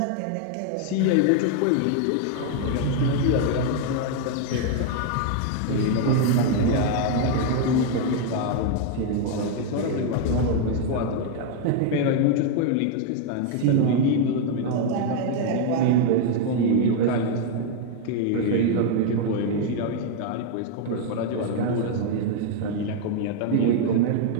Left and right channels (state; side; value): different; both; correlation 0.00